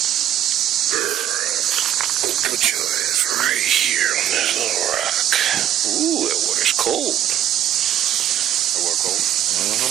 Put your ass right here on this little rock. Ooh, that water's cold. That water cold?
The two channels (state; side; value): quieter; left; 11.2 dB